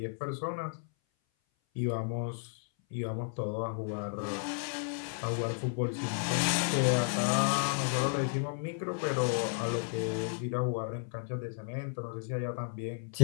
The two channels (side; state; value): right; silent; 55 dB below the other